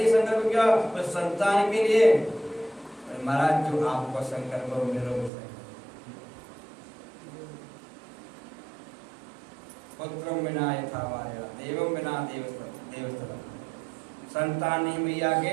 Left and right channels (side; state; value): left; drops out; at 5.3 s